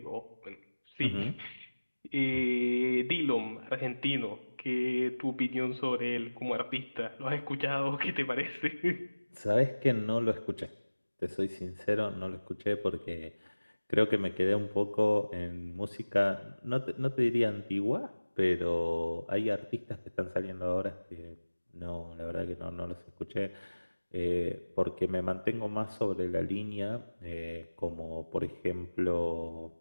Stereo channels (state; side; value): inverted; both; correlation -1.00